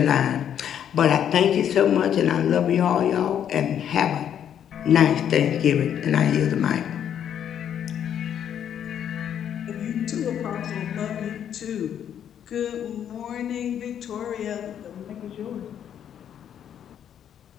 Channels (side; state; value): right; quieter; 9.4 dB